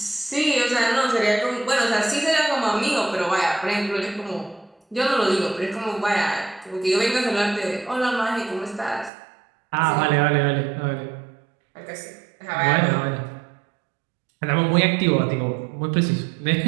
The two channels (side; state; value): left; drops out; at 9.1 s